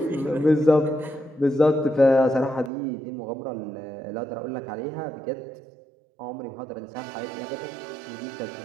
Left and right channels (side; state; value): left; drops out; at 2.7 s